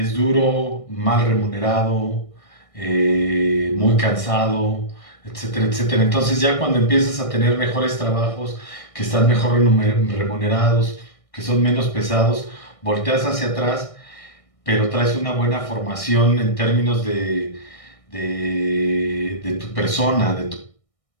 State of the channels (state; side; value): late; right; 1.6 ms